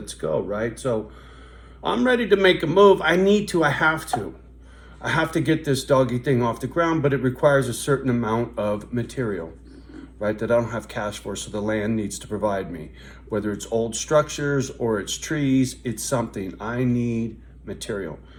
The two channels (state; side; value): identical; both; correlation 1.00